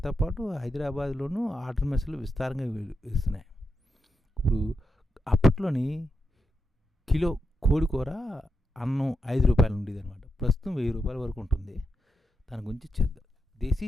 పాటు హైదరాబాద్లోనూ ఆర్డర్ మెస్సులు విస్తారంగా ఇస్తున్నాయి. ఇప్పుడు అప్పట్లోని కిలో కోడికూర అన్నం 5 రూపాయలు ఉండేది అనమాట. ప్రస్తుతం 1000 రూపాయల వరకు ఉంటుంది. దాని గురించి చేద్దాం. దేశీ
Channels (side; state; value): both; normal; correlation 0.85